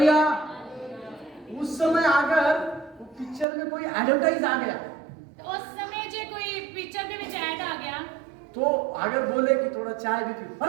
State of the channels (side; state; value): left; drops out; at 3.5 s